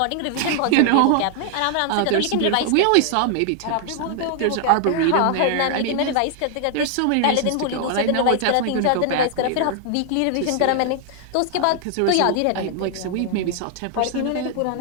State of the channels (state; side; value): different; both; correlation 0.00